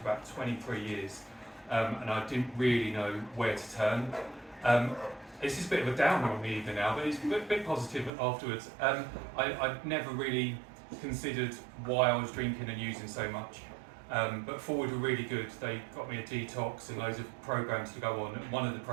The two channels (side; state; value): left; drops out; at 8.1 s